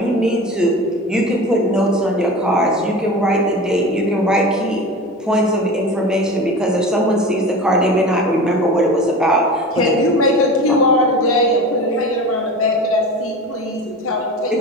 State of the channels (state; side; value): normal; both; correlation 0.33